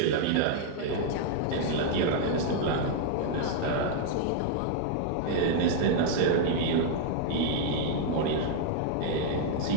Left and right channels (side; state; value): both; different; correlation -0.01